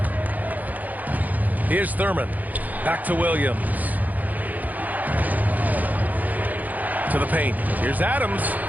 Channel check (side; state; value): left; late; 0.080 ms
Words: Here's Thurman. Back to Williams. To the paint. Here's Adams.